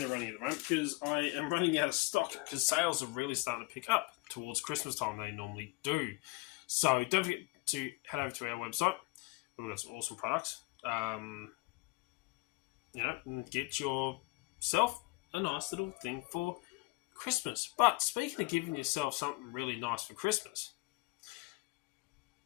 running at the moment because I am running out of stock because sales are really starting to pick up towards Christmas time. They normally do. So don't forget to head over to our website. We've got some awesome products. And get yourself a nice little thing for Christmas. But speaking of giving yourself something really nice for Christmas,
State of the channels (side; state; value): right; quieter; 25.4 dB